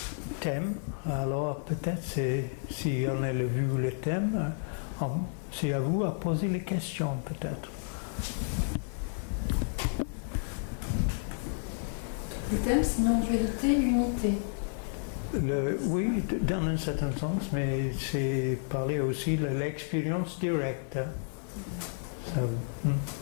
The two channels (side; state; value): right; silent; digital silence